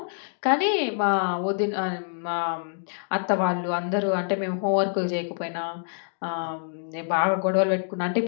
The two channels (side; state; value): right; silent; digital silence